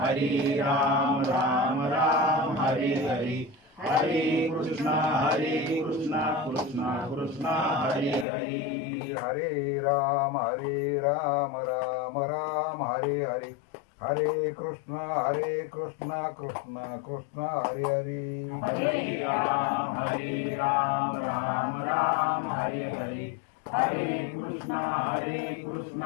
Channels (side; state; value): right; drops out; at 8.2 s